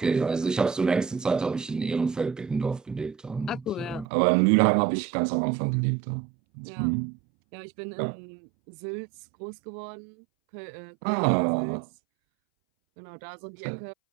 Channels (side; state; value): left; drops out; at 4.0 s